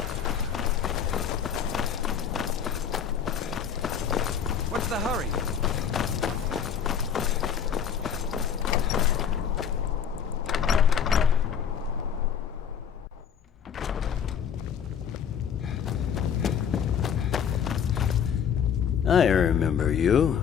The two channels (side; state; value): right; quieter; 7.9 dB